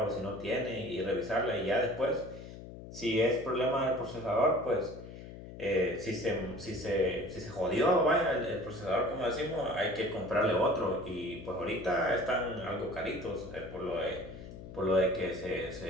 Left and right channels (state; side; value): noise; left; hum, 13 dB below the sound